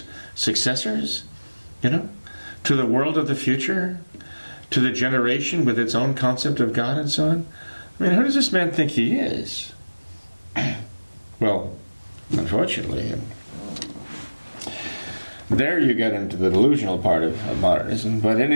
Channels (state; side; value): inverted; both; correlation -1.00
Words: successors, to the world of the future, to the generation with its own concept of God and so on. Who does this man think he is? Well, unfortunately, there you get into the delusional part of modernism. But in